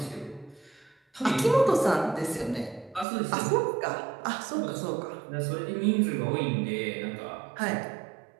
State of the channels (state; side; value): drops out; left; at 3.1 s